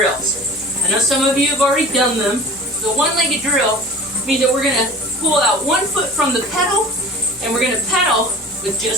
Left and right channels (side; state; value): both; normal; correlation 0.40